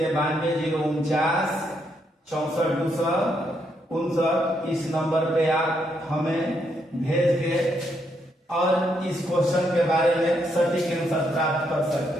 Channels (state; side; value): normal; both; correlation 0.77